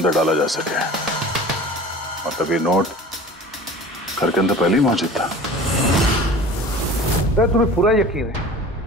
डाला जा सके। मतलब ये नोट घर के अंदर पहले ही मौजूद था। सर तुम्हें पूरा यकीन है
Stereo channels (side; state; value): both; normal; correlation 0.41